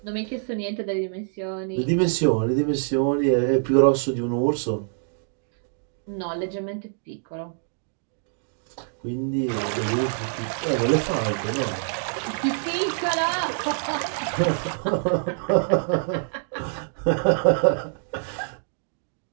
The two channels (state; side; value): silent; left; digital silence